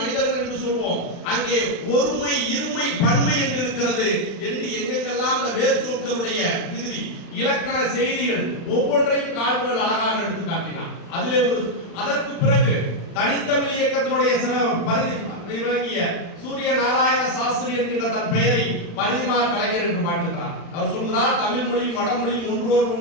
என்று சொல்வோம். அங்கே ஒருமை இருமை பன்மை என்று இருக்கிறது என்று எங்கெங்கெல்லாம் அந்த வேர் சொற்களுடைய விகுதி இலக்கண செய்திகள் ஒவ்வொன்றையும் கால்டுவெல் அழகாக எடுத்து காட்டினார். அதிலே அதற்கு பிறகு தனித்தமிழ் இயக்கத்தினுடைய பரிதி விளங்கிய சூரிய நாராயண சாஸ்திரி என்கின்ற தன் பெயரை பரிதிமார் கலைஞர் என்று மாற்றுகிறார். அவர் சொல்கிறார், தமிழ் மொழியும் வடமொழியும் ஒன்றோடு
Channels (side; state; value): right; late; 36 ms